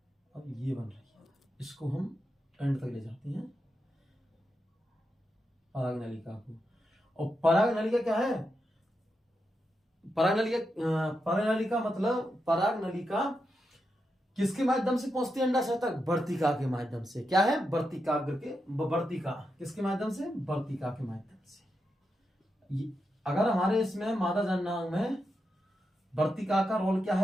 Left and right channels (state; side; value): normal; both; correlation 0.86